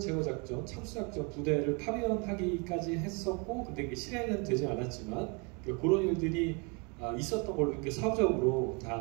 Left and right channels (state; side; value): quieter; left; 32.7 dB